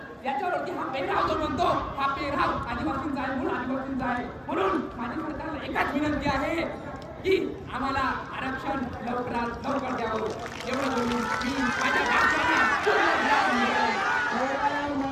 याच्यावरती हा पेहराव जो म्हणतो हा पेहराव आदिवासींचा आहे, मूळ आदिवासींचा आहे. म्हणून माझी सरकारला एकच विनंती आहे की आम्हाला आरक्षण लवकरात लवकर द्यावं. एवढं बोलून मी माझ्या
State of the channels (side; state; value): both; identical; correlation 1.00